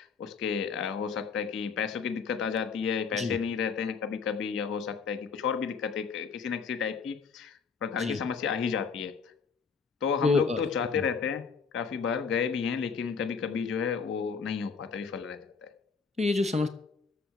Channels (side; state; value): right; quieter; 5.4 dB